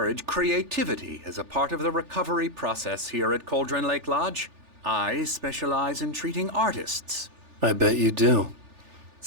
creativity as a part of the recovery process here at Cauldron Lake Lodge. I specialize in treating artists. I bet you do.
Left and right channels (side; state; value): left; late; 3.4 ms